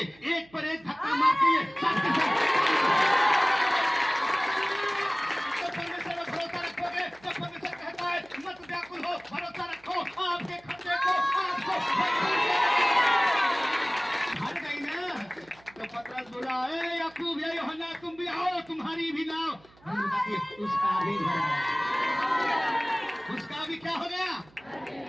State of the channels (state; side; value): noise; right; hum, 28 dB below the sound